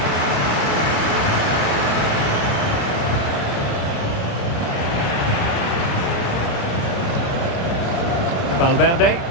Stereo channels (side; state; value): right; late; 29 ms